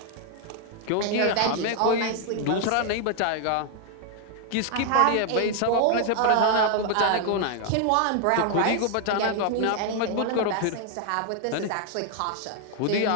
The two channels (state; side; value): different; both; correlation 0.00